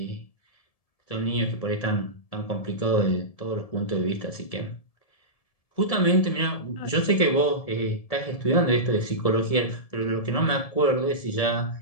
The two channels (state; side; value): late; right; 1.7 ms